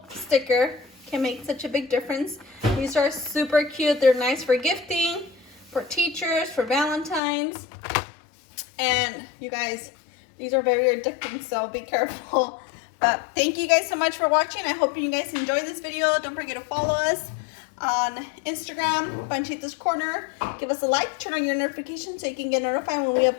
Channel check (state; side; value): drops out; right; at 7.2 s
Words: sticker can make such a big difference. These are super cute. They're nice for gifting, for teachers, for Valentines. And you guys, these are very addicting, so be careful. But thank you guys so much for watching. I hope you guys enjoyed this video. Don't forget to follow us on Instagram, Panchita's Corner. Give us a like, turn on your notifications so you can get notified when we